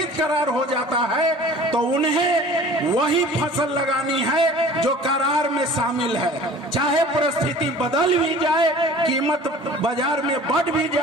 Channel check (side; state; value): both; normal; correlation 0.45